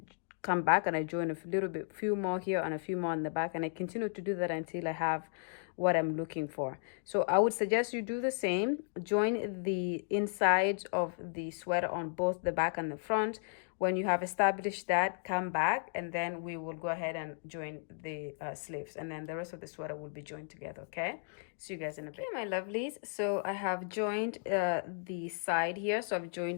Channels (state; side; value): silent; right; digital silence